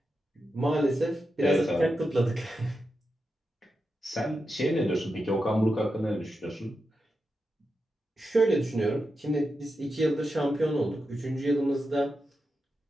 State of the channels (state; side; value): normal; both; correlation 0.88